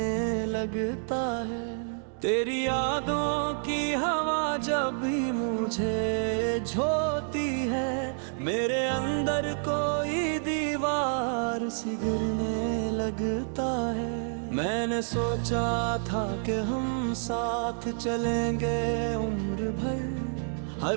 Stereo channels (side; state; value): left; silent; digital silence